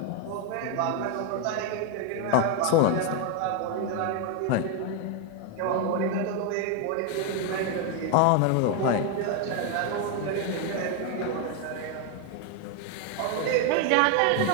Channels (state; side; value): different; both; correlation 0.01